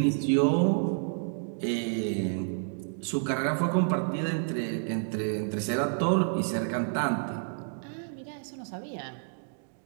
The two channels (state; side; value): silent; left; digital silence